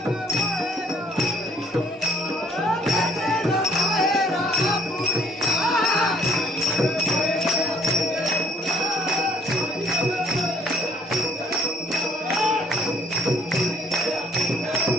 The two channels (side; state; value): both; normal; correlation 0.62